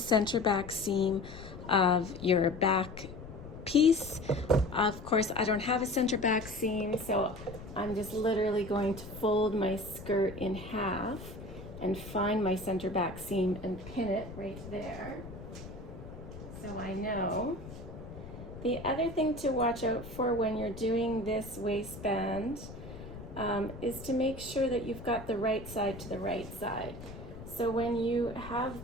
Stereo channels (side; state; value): left; noise; rumble, 13 dB below the sound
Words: back seam of your back piece. Of course, I don't have a center back seam, so I'm just literally going to fold my skirt in half and find my center back seam and pin it right there, so I know. The other thing to watch out for when you're doing this waistband is to make sure that you've got the right side to the right side. So when you